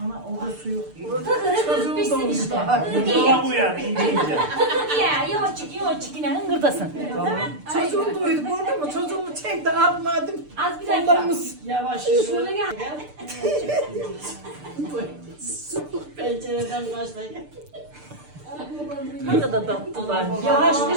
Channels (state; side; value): late; left; 6.7 ms